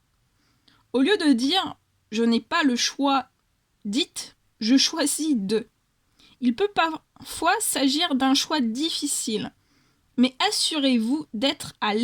Au lieu de dire « je n'ai pas le choix », dites « je choisis de ». Il peut parfois s'agir d'un choix difficile, mais assurez-vous d'être à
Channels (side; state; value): both; identical; correlation 1.00